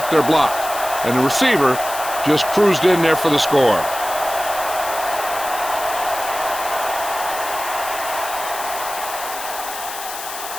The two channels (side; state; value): left; noise; hiss, 9 dB below the sound